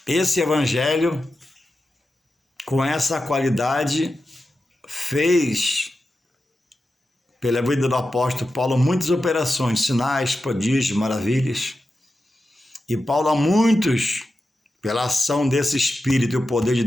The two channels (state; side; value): normal; both; correlation 0.91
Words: esse evangelho, com essa qualidade, fez, pela vida do apóstolo Paulo, muitas operações, sinais, prodígios, maravilhas. E Paulo, a muitos, pela ação desse Espírito e o poder de